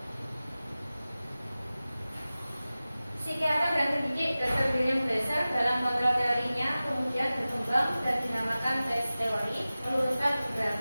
Psikiater dan pendidik Dr. William Glasser dalam kontrol teorinya kemudian berkembang dan dinamakan tes teori, meluruskan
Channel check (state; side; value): inverted; both; correlation -0.96